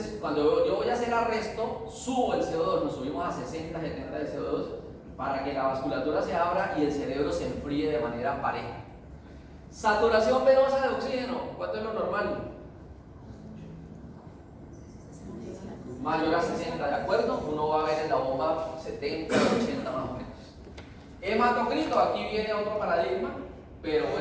cuando yo voy a hacer arresto, subo el CO2, nos subimos a 60, 70 de CO2 para que la vasculatura se abra y el cerebro se enfríe de manera pareja. Saturación venosa de oxígeno, ¿cuánto es lo normal? Mayor a 60, ¿de acuerdo? Uno va a ver en la bomba 70, 80 más o menos. Hematocrito, aquí viene otro paradigma, pero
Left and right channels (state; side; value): identical; both; correlation 1.00